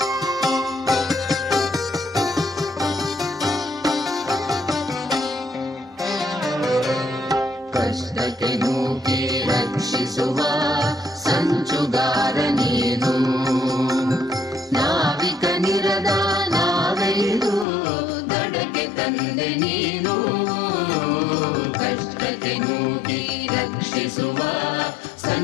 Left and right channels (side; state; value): right; drops out; at 17.7 s